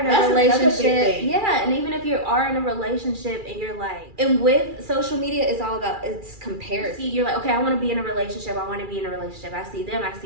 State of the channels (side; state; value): left; late; 2.4 ms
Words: a relationship, yeah, and even if you are in a relationship and you're like, and with social media, it's all about, it's comparison. You're like, okay, I want to be in a relationship, I see